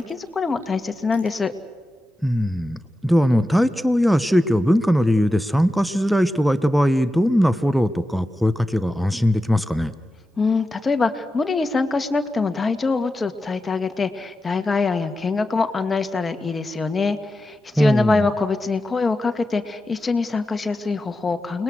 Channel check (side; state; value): both; normal; correlation 0.92